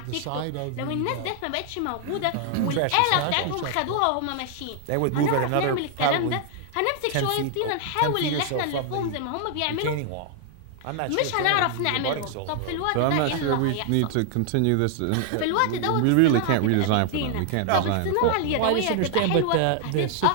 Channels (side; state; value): both; different; correlation 0.00